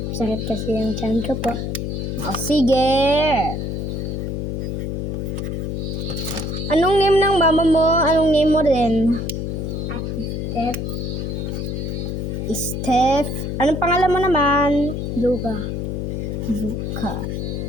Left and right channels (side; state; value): left; noise; hum, 3 dB below the sound